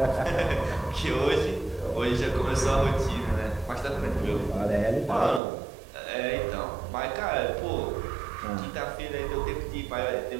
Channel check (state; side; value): drops out; left; at 5.4 s